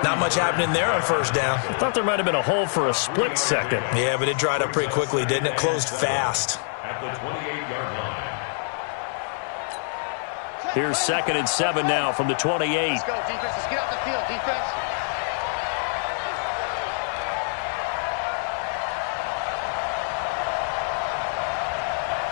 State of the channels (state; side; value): silent; right; digital silence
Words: Not much happening there on first down. I thought there might have been a hole for a split second. Yeah, but it dried up pretty quickly, didn't it? Closed fast. At the 28-yard line. Here's 2nd and 7 now from the 28. Let's go, defense. Let's get out the field, defense.